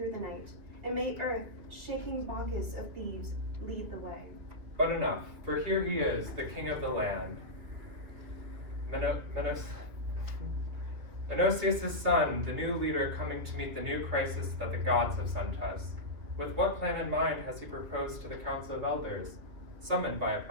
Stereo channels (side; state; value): left; late; 2.8 ms